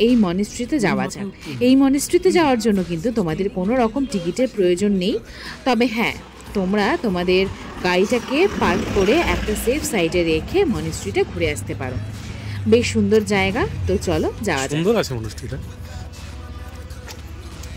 এই মনেস্ট্রিতে যাওয়া যাক। এই মনেস্ট্রিতে যাওয়ার জন্য কিন্তু তোমাদের কোনো রকম টিকিটের প্রয়োজন নেই। তবে হ্যাঁ, তোমরা তোমাদের গাড়িটাকে পার্ক করে একটা সেফ সাইডে রেখে মনেস্ট্রিটা ঘুরে আসতে পারো। বেশ সুন্দর জায়গা। তো চলো যাওয়া যাক। সুন্দর আছে মনেস্ট্রিটা।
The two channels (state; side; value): identical; both; correlation 1.00